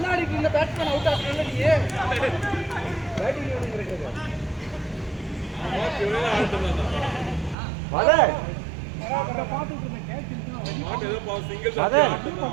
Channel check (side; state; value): left; drops out; at 7.6 s